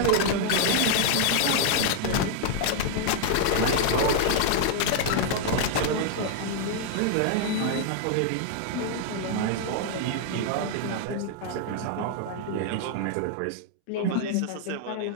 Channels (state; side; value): different; both; correlation 0.00